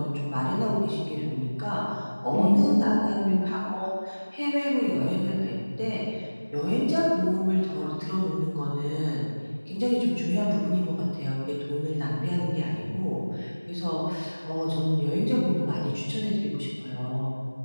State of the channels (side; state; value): both; inverted; correlation -1.00